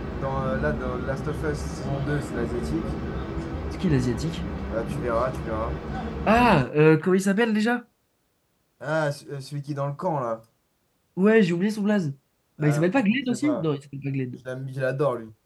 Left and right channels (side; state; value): both; identical; correlation 1.00